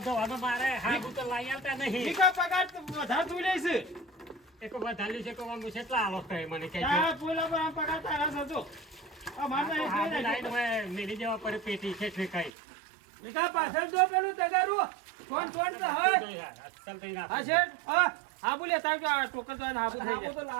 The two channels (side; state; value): left; drops out; at 12.5 s